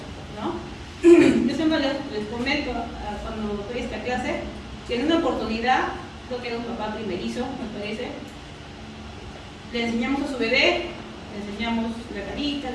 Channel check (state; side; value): identical; both; correlation 1.00